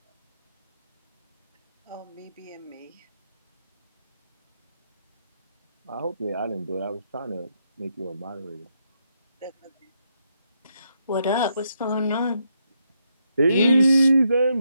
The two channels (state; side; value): inverted; both; correlation -0.79